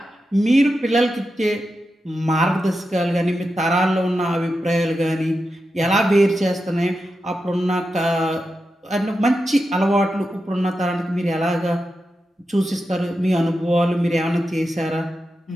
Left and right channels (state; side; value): normal; both; correlation 0.89